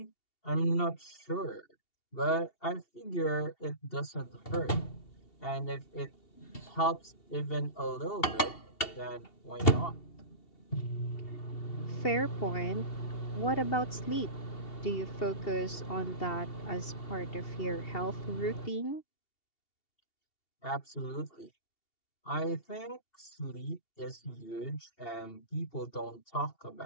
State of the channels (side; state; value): right; late; 2.7 ms